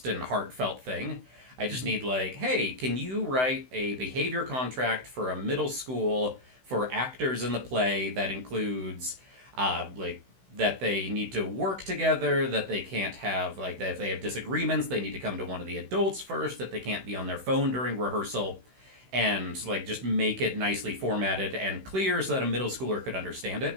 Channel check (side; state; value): left; late; 16 ms